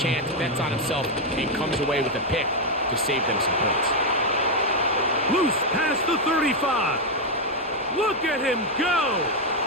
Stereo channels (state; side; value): normal; both; correlation 0.02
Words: bets on himself, and comes away with a pick to save them some points. Loose past the 35. Look at him go.